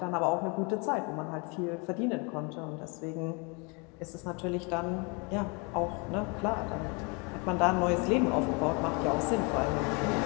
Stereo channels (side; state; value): right; quieter; 32.2 dB